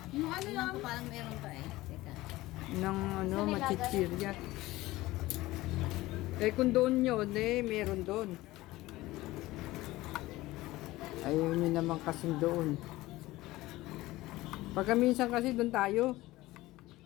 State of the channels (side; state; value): right; quieter; 18.3 dB